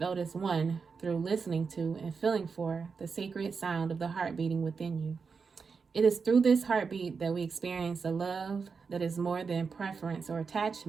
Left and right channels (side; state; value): left; quieter; 5.3 dB